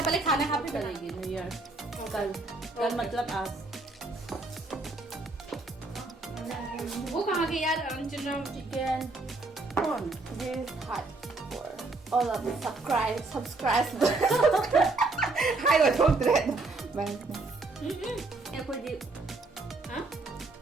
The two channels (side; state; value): left; quieter; 3.4 dB